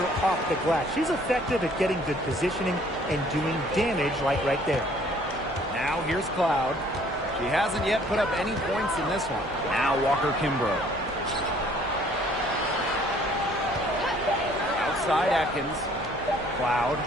off the glass. She's effective at getting good positioning and doing damage like right there. Now here's Cloud. She hasn't yet put up any points in this one. Now Walker Kimbrough. Outside Atkins. Cloud.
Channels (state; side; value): normal; both; correlation 0.58